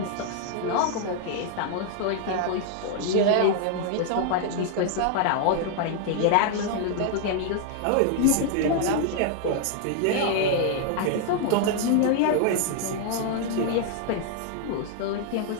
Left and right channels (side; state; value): both; different; correlation 0.00